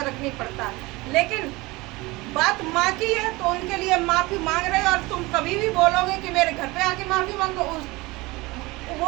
नहीं पड़ता, लेकिन बात माँ की है तो उनके लिए माफ़ी मांग रहे हैं। और तुम कभी भी बोलोगे कि मेरे घर पे आके माफ़ी मांगो,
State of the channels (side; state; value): left; quieter; 22.2 dB